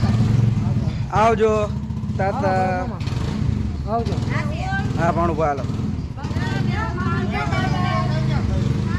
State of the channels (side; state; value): both; identical; correlation 1.00